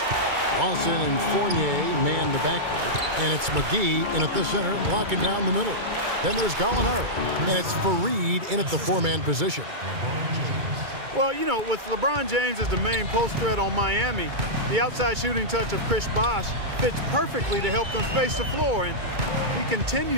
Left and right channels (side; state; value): left; late; 2.3 ms